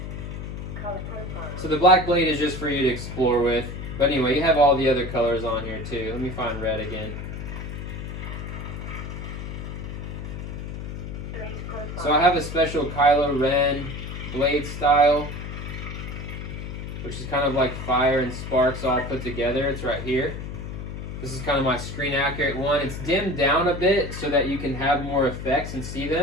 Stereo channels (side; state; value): left; noise; hum, 7 dB below the sound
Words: So the black blade is just for you to explore with. But anyway, you have all the other colors on here too. Let me find red again. So I have a special Kylo Ren blade style, which is kind of like fire and sparks all put together. It's right here. This is kind of my screen accurate one. It's dimmed down a bit so that you can have more effects and see